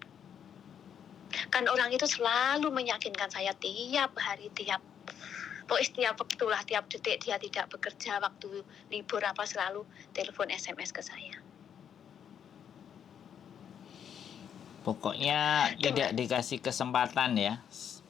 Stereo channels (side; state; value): right; quieter; 8.5 dB